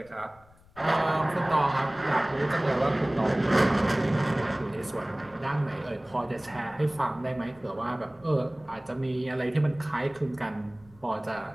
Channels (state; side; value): noise; left; rumble, 27 dB below the sound